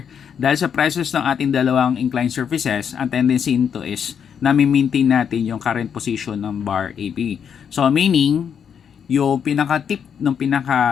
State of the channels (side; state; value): right; quieter; 7.6 dB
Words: dahil sa presence ng ating dalawang inclined surfaces, ang tendency nito is nami-maintain natin yung current position ng bar AB. So, meaning, yung pinaka-tip ng